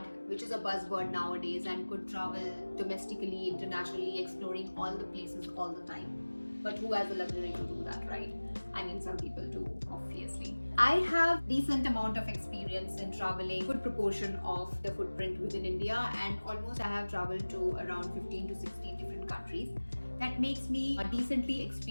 which is a buzzword nowadays, and could travel domestically, internationally, exploring all the places all the time. But who has the luxury to do that, right? I mean, some people do, obviously. I have decent amount of experience in traveling, good proportion of the footprint within India, and almost I have traveled to around 15 to 16 different countries. That makes me decently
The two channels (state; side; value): inverted; both; correlation -1.00